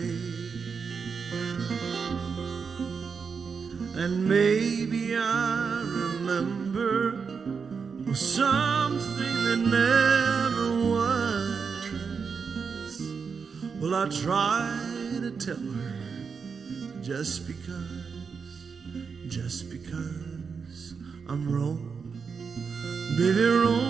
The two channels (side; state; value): left; quieter; 5.7 dB